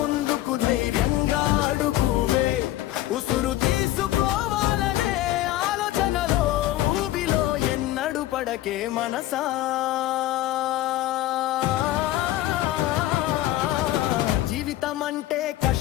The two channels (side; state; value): right; quieter; 14.8 dB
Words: ధైర్యంగా అడుగువే, ఉసురు తీసుకోవాలనే ఆలోచనలో ఊబిలో ఎన్నడు పడకే మనసా. జీవితం అంటే